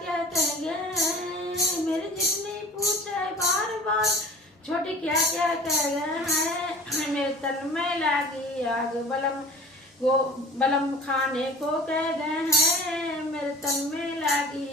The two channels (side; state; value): both; normal; correlation 0.43